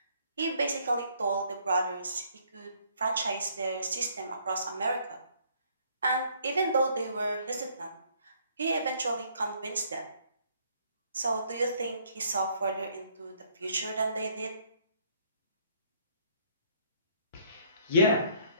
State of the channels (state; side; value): inverted; both; correlation -0.64